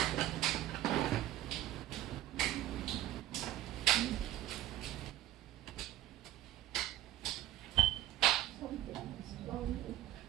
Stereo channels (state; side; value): quieter; left; 13.8 dB